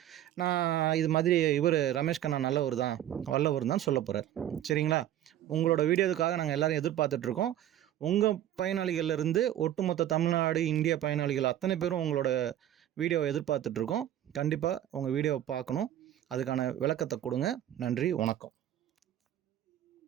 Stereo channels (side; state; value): left; quieter; 11.9 dB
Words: நான் இது மாதிரி இவர் ரமேஷ் கண்ணா நல்லவர் தான், வல்லவர் தான் சொல்ல போகிறார். சரிங்களா? உங்களோட வீடியோவுக்காக நாங்கள் எல்லோரும் எதிர்பார்த்துட்ருக்கோம். உங்கள் பயனாளிகள்லேருந்து ஒட்டுமொத்த தமிழ்நாடு, இந்திய பயனாளிகள் அத்தனை பேரும் உங்களோட வீடியோவை எதிர்பார்த்துட்ருக்கோம். கண்டிப்பாக உங்கள் வீடியோவை பார்க்கணும். அதுக்கான விளக்கத்தை கொடுங்க. நன்றி, வணக்கம்.